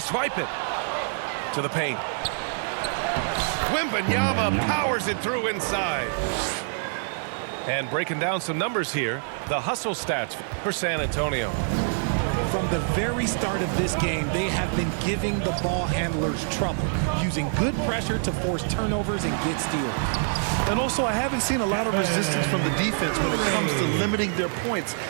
it to the paint. Wembanyama powers it through inside. And breaking down some numbers here, the hustle stats for San Antonio. From the very start of this game, they have been giving the ball handlers trouble, using good pressure to force turnovers and get steals. And also, I haven't seen a lot of resistance from the defense when it comes to limiting their points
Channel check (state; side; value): silent; left; 61 dB below the other